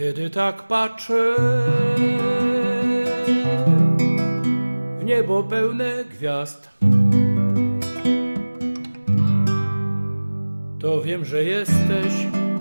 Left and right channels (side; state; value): both; inverted; correlation -1.00